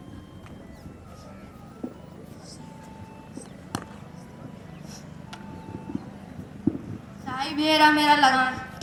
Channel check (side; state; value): both; identical; correlation 1.00